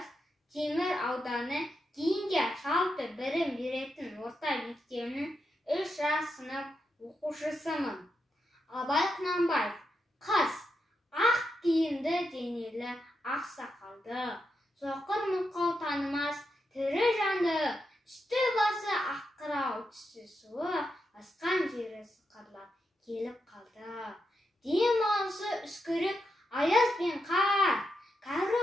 Темір ауданы кейінге жалпы білім беретін орта мектебінің 3 жас сынып оқушысымын. Абай Құнанбаев: қыз, ақ киімді денелі, ақ сақалды, соқыр мылқау танымас тірі жанды, үсті басы аққырау, түсі суық, асқан жері сықырлап келіп қалды. Дем алысы үскірік аяз бен қар, кәрі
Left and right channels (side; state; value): both; normal; correlation 0.85